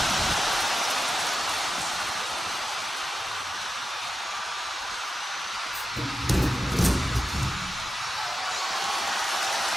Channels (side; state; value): both; normal; correlation 0.91